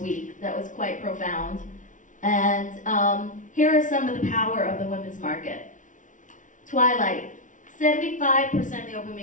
week that was quite profound. And here are some of the power of the women's market. Twilight, 75% of the open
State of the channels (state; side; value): late; right; 0.37 ms